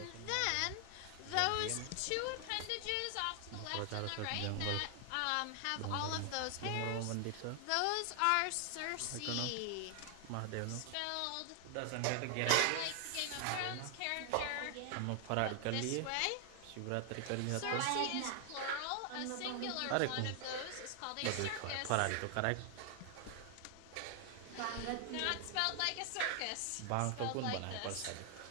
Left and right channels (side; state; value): both; different; correlation 0.00